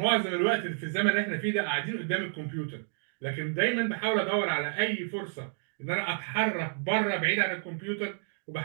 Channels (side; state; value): left; silent; digital silence